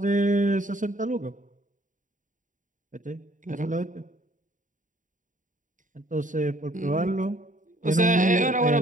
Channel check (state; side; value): late; left; 0.37 ms